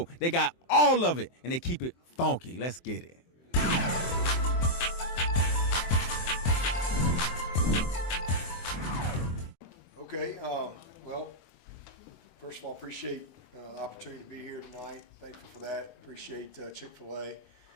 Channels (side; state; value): right; late; 23 ms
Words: They got all of it, and they keep it funky. Let's get it. Okay, well, first of all, appreciate the opportunity to be here tonight. Thankful for that. Appreciate Chick-fil-A